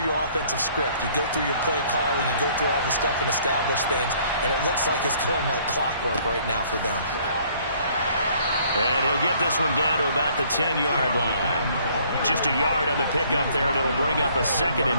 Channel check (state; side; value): inverted; both; correlation -0.60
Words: your offensive script. You go through your play calling. You go through all the stuff and establish things. And it looks like it's going like clockwork right now for them. And he'll get this one down to about the 10-yard line. Just a yard on the pickup there, and it'll bring up a 2nd